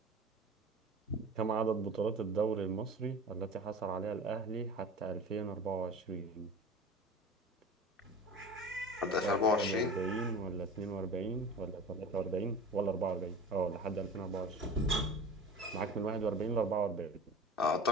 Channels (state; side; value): normal; both; correlation 0.36